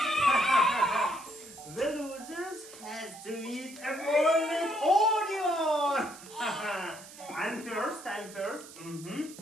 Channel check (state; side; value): noise; right; hiss, 17 dB below the sound